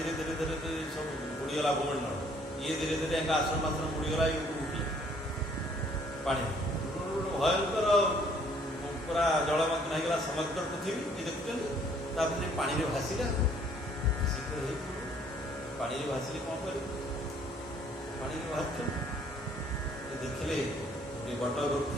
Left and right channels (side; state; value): both; normal; correlation 0.61